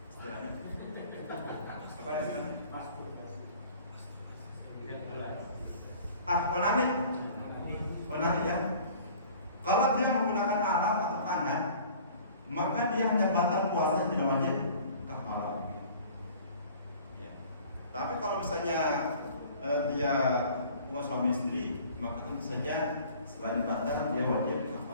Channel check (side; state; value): both; inverted; correlation -0.48